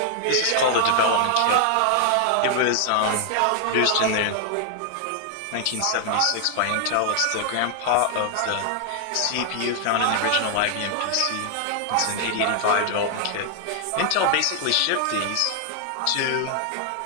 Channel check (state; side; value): different; both; correlation 0.00